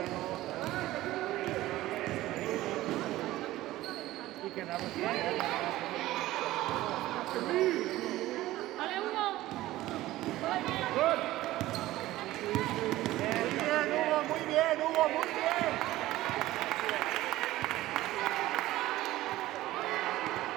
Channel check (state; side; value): quieter; left; 16.3 dB